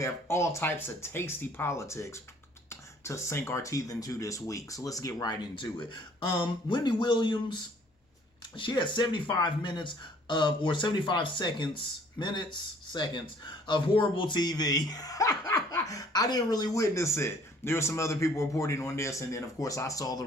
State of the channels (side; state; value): both; normal; correlation 0.58